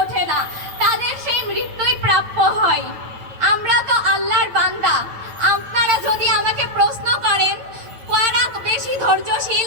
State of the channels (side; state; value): left; late; 9.1 ms